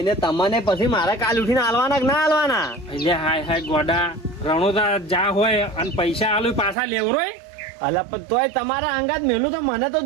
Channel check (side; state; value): left; drops out; at 6.8 s